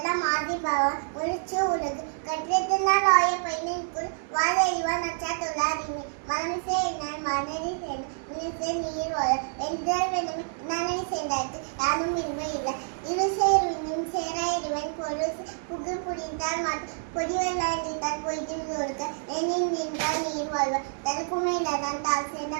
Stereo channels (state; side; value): silent; left; digital silence